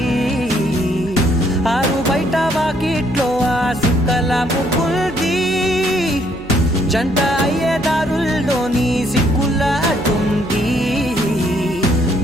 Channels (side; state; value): right; noise; hum, 18 dB below the sound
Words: ఆరు బయట వాకిట్లో ఆ సుక్కల ముగ్గుల్ది జంట అయ్యే దారుల్లోని సిగ్గుల అడ్డుంది